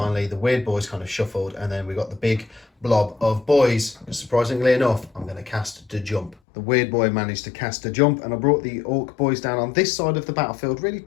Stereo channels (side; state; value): right; drops out; at 6.4 s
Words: the weird boys kind of shuffled, and then we got the big blob of boys. Surprisingly enough, I'm going to cast the jump. The weird boy managed to cast a jump, and I brought the orc boys down on this side of the battlefield, really